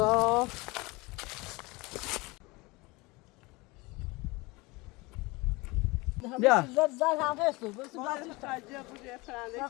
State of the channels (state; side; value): quieter; right; 23.9 dB